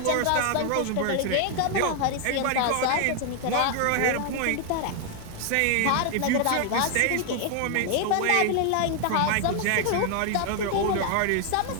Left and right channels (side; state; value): both; different; correlation 0.00